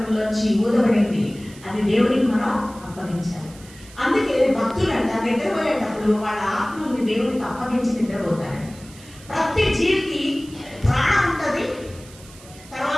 ఊదబడింది. అది దేవునికి మనం అప్పగించాలి. అందుకే భక్తులంట నిద్రపోయేటప్పుడు వాళ్ళ ఆత్మల్ని దేవునికి అప్పగించి నిద్రపోతారు. ప్రతి జీవికి ప్రాణం ఉంటుంది,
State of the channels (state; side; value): noise; right; hiss, 21 dB below the sound